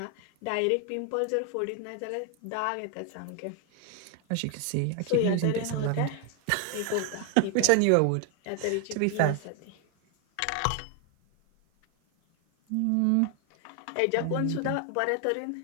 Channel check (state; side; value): different; both; correlation 0.00